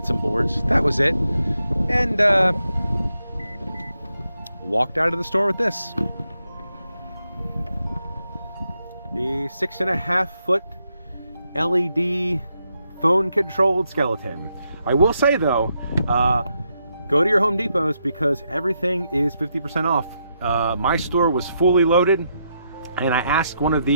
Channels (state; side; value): inverted; both; correlation -0.81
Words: some boards, that was it. And walked out of the store with this. The 6.5 foot LED phone controlled skeleton. I will say though, go to your Home Depots because everything is 50% off. My store was fully loaded, and I asked one of